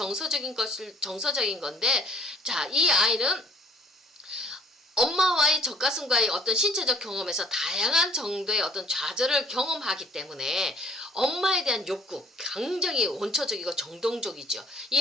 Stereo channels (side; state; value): both; normal; correlation 0.58